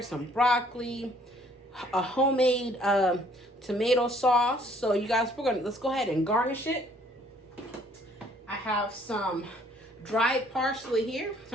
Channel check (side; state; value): both; normal; correlation 0.62